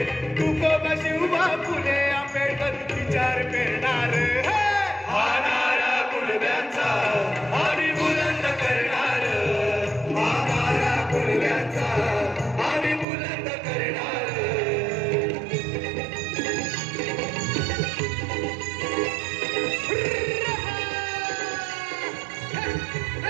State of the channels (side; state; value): left; drops out; at 13.1 s